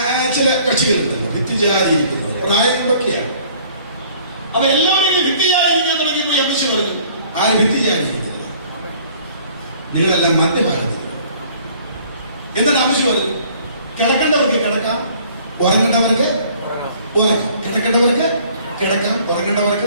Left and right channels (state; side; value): inverted; both; correlation -0.56